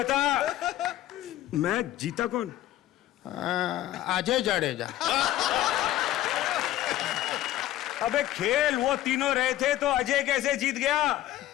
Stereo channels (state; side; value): quieter; right; 14.3 dB